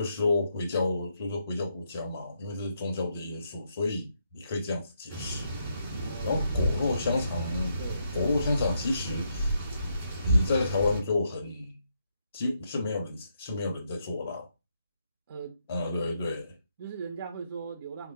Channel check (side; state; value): both; inverted; correlation -0.78